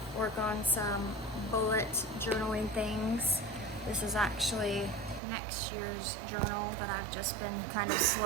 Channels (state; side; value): drops out; left; at 5.2 s